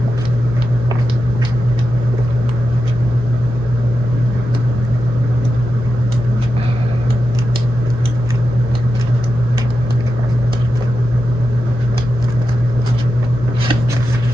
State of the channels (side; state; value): both; normal; correlation 0.90